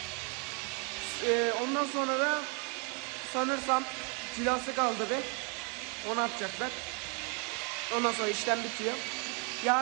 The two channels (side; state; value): left; quieter; 35.2 dB